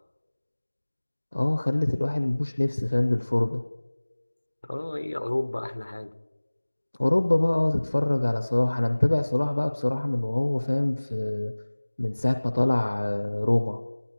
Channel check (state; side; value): inverted; both; correlation -1.00